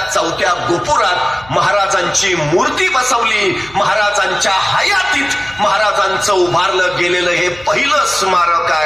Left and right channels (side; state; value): left; noise; hum, 23 dB below the sound